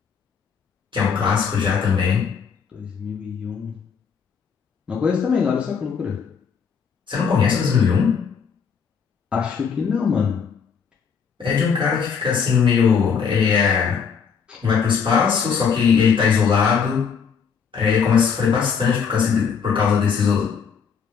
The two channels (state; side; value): quieter; right; 6.4 dB